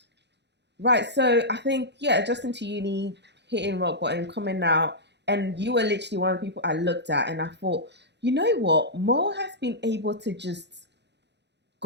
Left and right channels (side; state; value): left; late; 0.50 ms